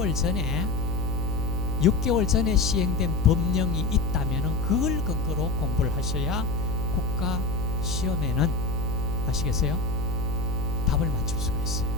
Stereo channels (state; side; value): noise; left; hum, 3 dB below the sound